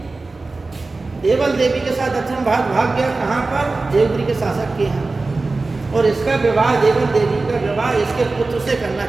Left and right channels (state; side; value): quieter; left; 3.5 dB